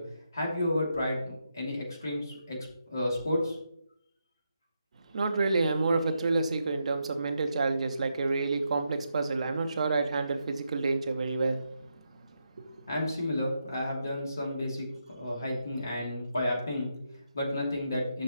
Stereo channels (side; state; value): both; inverted; correlation -0.83